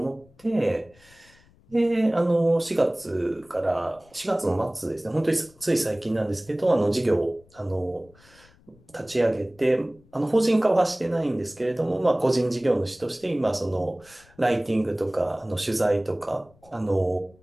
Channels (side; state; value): left; noise; rumble, 29 dB below the sound